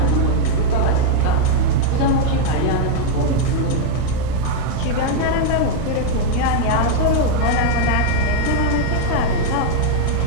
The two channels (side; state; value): both; different; correlation 0.00